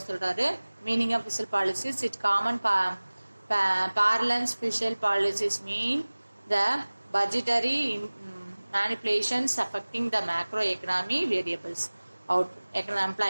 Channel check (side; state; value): both; inverted; correlation -1.00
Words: சொல்றாரு. Meaning of fiscal policies, its common parlance fiscal policies mean the budgetary manipulations affecting the macroeconomy variables. Out